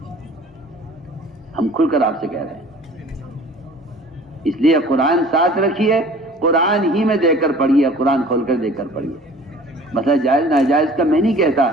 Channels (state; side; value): normal; both; correlation 0.48